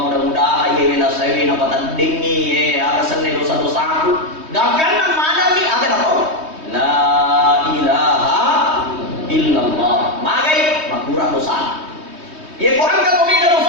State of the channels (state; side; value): late; left; 3.2 ms